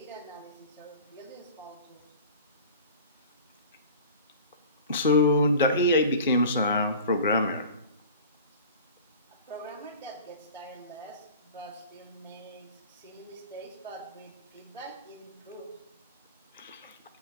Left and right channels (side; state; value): both; inverted; correlation -0.40